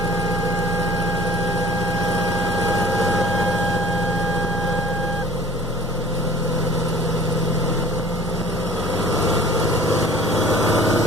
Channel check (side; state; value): both; normal; correlation 0.47